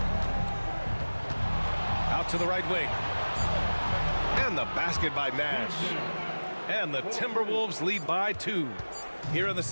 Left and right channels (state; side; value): inverted; both; correlation -1.00